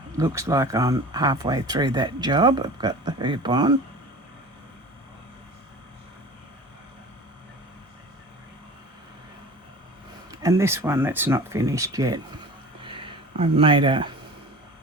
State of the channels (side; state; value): both; normal; correlation 0.38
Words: Looks like I'm halfway through that job. I've got the hoop on. And this one that's not finished yet. I've made a